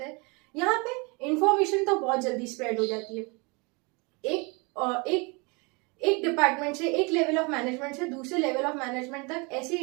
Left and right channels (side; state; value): left; quieter; 29.8 dB